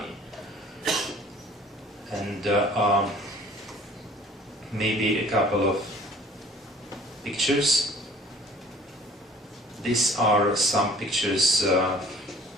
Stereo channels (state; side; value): normal; both; correlation 0.51